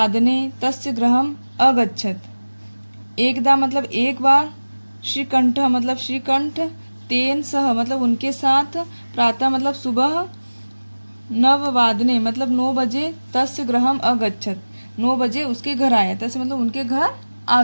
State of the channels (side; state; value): both; inverted; correlation -1.00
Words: तस्य गृहम् अगच्छत्। एकदा मतलब एक बार, श्रीकंठ मतलब श्रीकंठ, तेन सह मतलब उनके साथ, प्रातः मतलब सुबह, नववादने मतलब 9 बजे, तस्य गृहम् अगच्छत् 9 बजे उसके घर आया। तस्य मतलब उनके घर आ